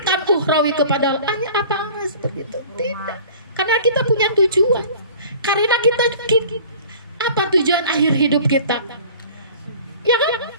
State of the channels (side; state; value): both; inverted; correlation -0.45